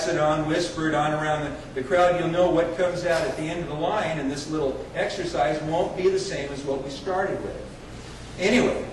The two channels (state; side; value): identical; both; correlation 1.00